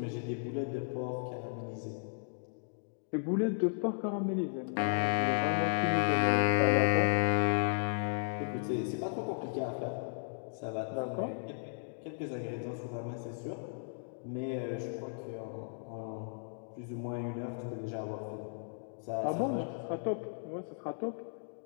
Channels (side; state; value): right; silent; digital silence